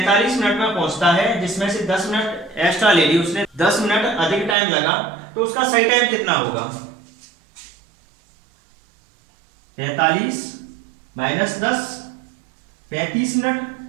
मिनट में पहुंचता है, जिसमें से 10 मिनट एक्स्ट्रा ले ली उसने, 10 मिनट अधिक टाइम लगा, तो उसका सही टाइम कितना होगा, 45 माइनस 10, 35 मिनट।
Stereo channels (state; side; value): drops out; left; at 4.5 s